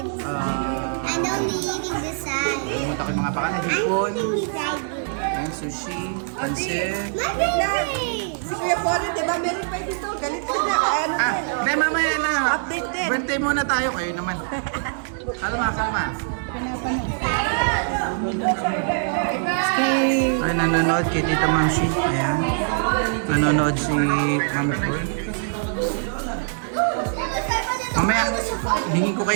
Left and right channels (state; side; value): silent; left; digital silence